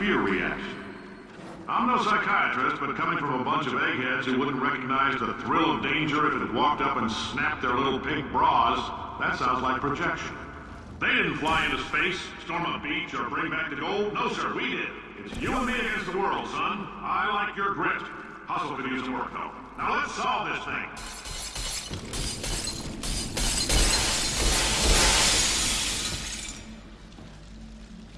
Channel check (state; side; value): identical; both; correlation 1.00